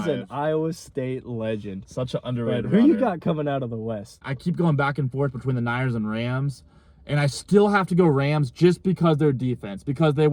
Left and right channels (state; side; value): identical; both; correlation 1.00